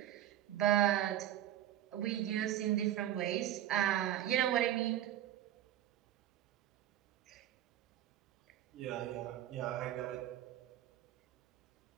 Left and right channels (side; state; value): left; quieter; 12.2 dB